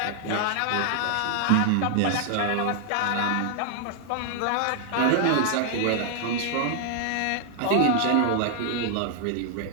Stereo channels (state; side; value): different; both; correlation 0.00